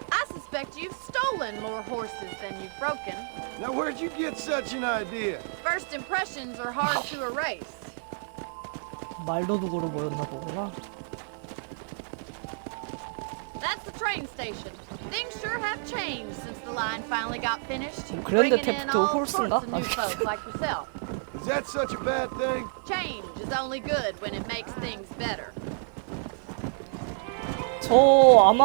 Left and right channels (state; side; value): silent; left; digital silence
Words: I suspect you've stolen more horses than you've broken. Now, where'd you get such an idea? First impressions are hard to erase. 말도둑으로 보였나 보구나. That's the train station. Things sure have changed since the line finally got finished. 그랜드 Bringing in 테프트 all 홀스인가? sorts of new folks like yourself. Is that such a bad thing? Change is only good when it makes things better. 저